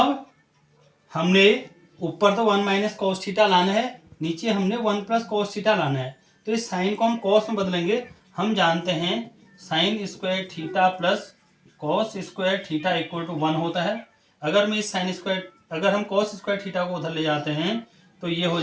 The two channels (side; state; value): both; identical; correlation 1.00